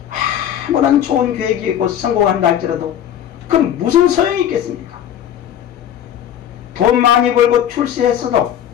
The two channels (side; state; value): right; quieter; 10.4 dB